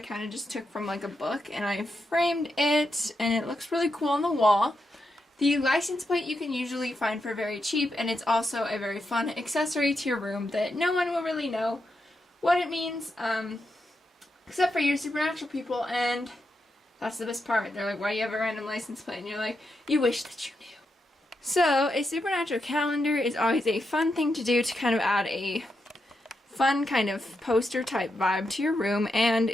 kind of just took from like a book and I framed it and it looks really cool on the wall. The license plate you can usually find for very cheap, and it's also a very fun accessory to your room that no one will really know what it means, except for your supernatural people, and that's the best part. They're like, why do you have a random license plate? And you're like, you wish that you knew. So, a supernatural calendar is always a fun thing to do to kind of add a fun kind of poster type vibe to your room, and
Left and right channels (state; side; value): normal; both; correlation 0.85